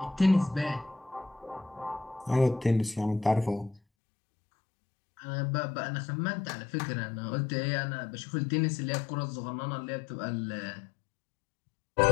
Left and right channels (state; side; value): drops out; right; at 3.8 s